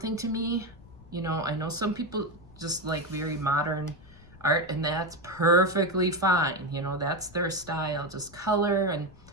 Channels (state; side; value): noise; left; rumble, 22 dB below the sound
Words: to me. You know, I know some people just like very modern art, and that's perfectly fine. You know, that's their style, just color and